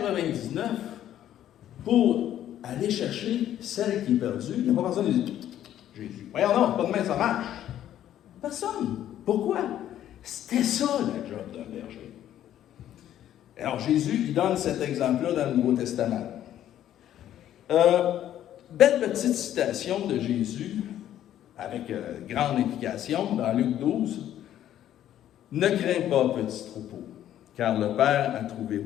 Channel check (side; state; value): right; quieter; 11.6 dB